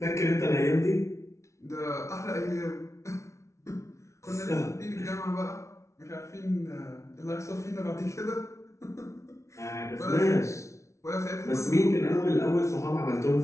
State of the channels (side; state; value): right; late; 0.14 ms